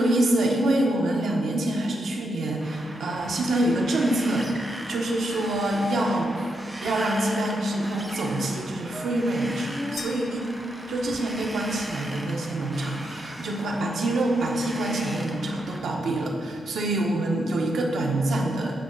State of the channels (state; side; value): normal; both; correlation 0.82